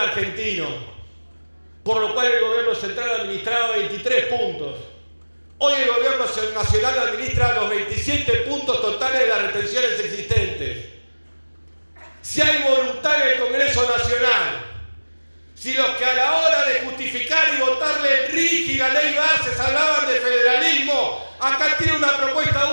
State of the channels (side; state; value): both; inverted; correlation -1.00